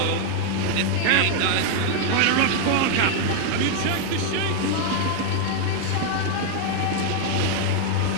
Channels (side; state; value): both; different; correlation 0.00